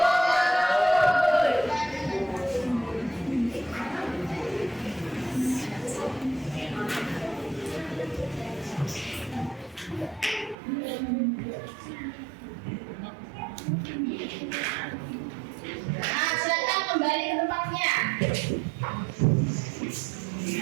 Nah, silakan kembali ke tempatnya.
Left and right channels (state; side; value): drops out; left; at 10.6 s